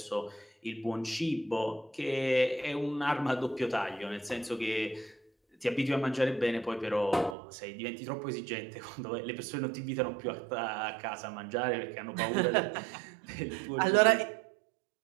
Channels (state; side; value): drops out; left; at 7.4 s